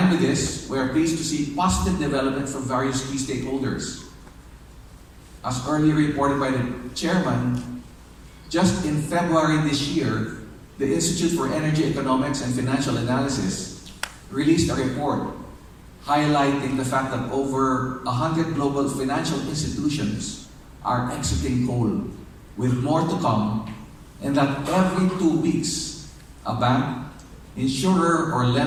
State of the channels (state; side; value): identical; both; correlation 1.00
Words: with this, we are pleased to see positive development from various key stakeholders. As earlier reported by the chairman, just in February this year, the Institute for Energy Economics and Financial Analysis released a report highlighting the fact that over 100 global financial institutions are exiting coal, with more to come, and that every 2 weeks, a bank, insurer or